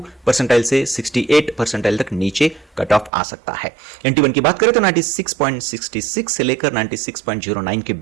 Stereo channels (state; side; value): drops out; left; at 3.1 s